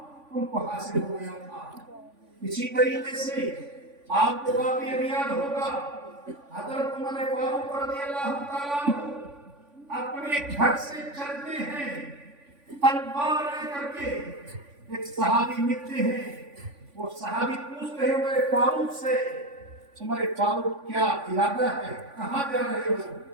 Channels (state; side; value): late; left; 3.5 ms